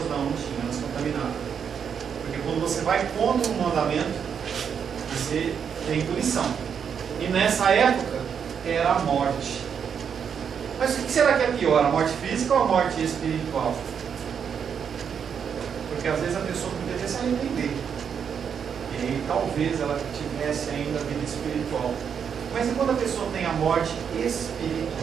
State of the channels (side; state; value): left; quieter; 7.3 dB